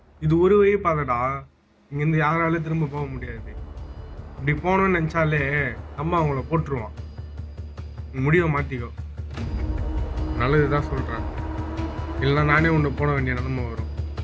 இது ஒரு வழி பாதடா, இங்கேருந்து யாராலும் திரும்ப போக முடியாது. இப்படி போகணும்னு நினைச்சாலே அம்மா அவங்கள போட்டுருவான். நீ முடிவை மாத்திக்கோ, நல்லதுதான் சொல்றேன். இல்லைன்னா நானே உன்னை போட வேண்டிய நிலைமை வரும்.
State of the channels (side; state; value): both; identical; correlation 1.00